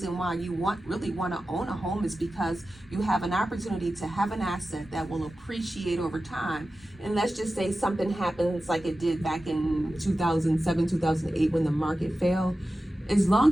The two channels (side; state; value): both; normal; correlation 0.94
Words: why you really want to own a home, is because you have an opportunity to have an asset that will appreciate over time. And let's just say something happens like it did back in 2007, 2008 when the market fell. As